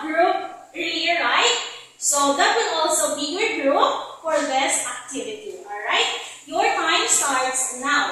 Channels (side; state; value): both; identical; correlation 1.00